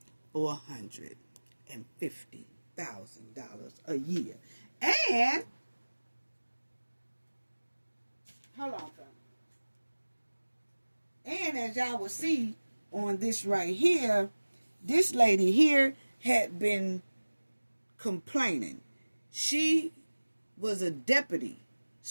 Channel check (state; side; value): inverted; both; correlation -1.00